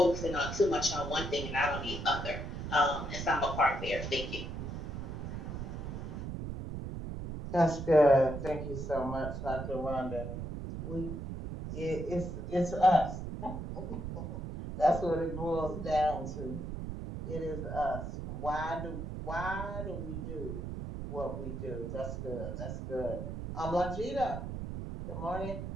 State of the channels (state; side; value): noise; right; rumble, 6 dB below the sound